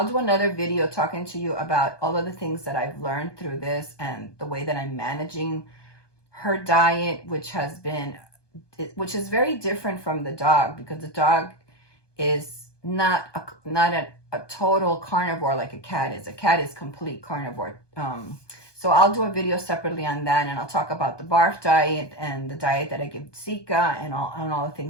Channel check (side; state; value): right; late; 1.2 ms